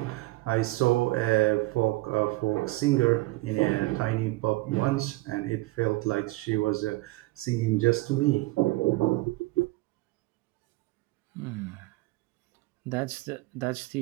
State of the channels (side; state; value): left; quieter; 20.4 dB